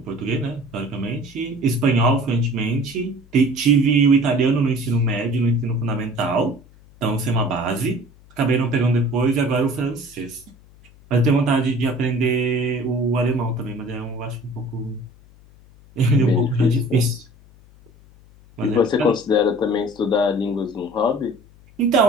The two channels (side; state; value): left; noise; hum, 25 dB below the sound